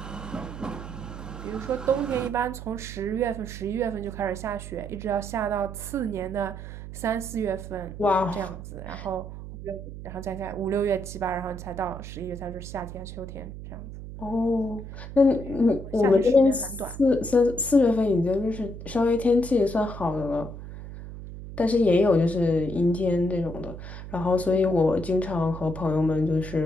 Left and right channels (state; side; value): noise; right; hum, 11 dB below the sound